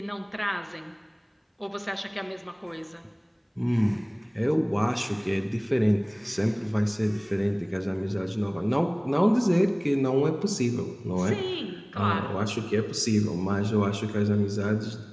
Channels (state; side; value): identical; both; correlation 1.00